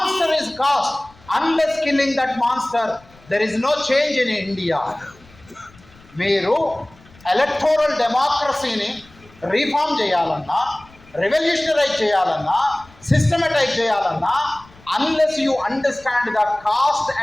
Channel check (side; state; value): left; noise; rumble, 26 dB below the sound